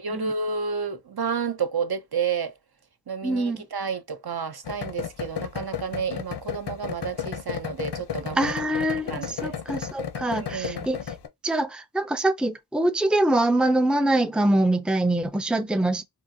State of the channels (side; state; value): both; normal; correlation 0.59